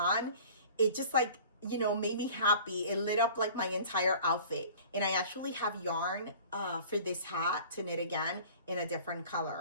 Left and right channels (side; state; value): both; inverted; correlation -0.45